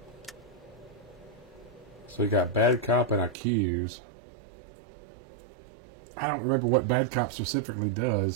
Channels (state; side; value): drops out; left; at 3.4 s